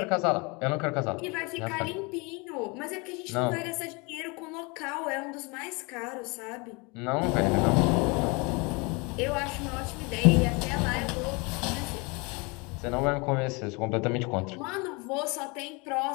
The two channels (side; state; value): right; quieter; 28.7 dB